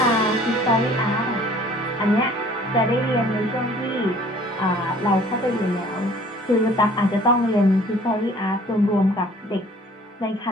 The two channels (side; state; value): both; normal; correlation 0.53